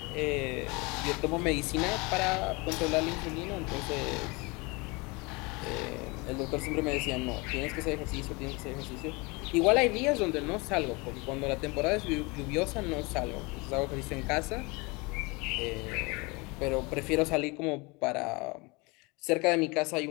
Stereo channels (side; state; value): right; quieter; 26.8 dB